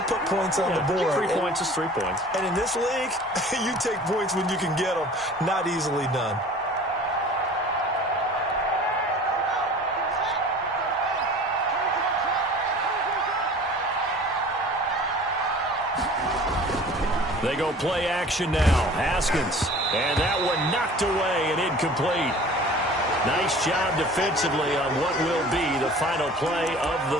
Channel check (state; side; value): normal; both; correlation 0.45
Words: put points on the board. 3 points is 3 points. And in this league, you take points when you can get them. Not easily done. They go play action now. Haskins. And that one knocked away and incomplete. Nice job defensively on what will be the final play of